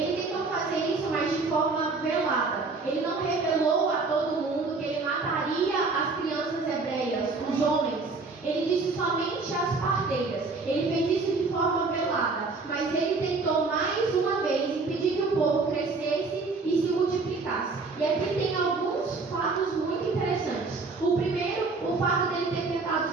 tentou fazer isso, mas de forma velada. Ele não revelou a todo mundo que ele mataria as crianças hebreias, os homens. Ele disse somente às parteiras. Ele fez isso de forma velada, mas ele tentou mais uma vez impedir que o povo crescesse e se multiplicasse. E aqui tem alguns fatos muito interessantes. O primeiro, o fato dele ter tentado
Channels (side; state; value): left; quieter; 4.0 dB